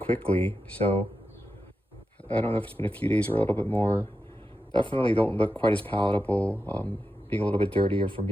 So I don't know if it's been a few days or a little bit more. Definitely don't look quite as palatable, being a little bit dirtier from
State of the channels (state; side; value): normal; both; correlation 0.89